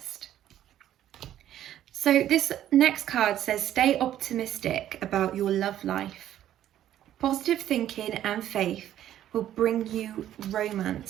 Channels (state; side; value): quieter; left; 11.8 dB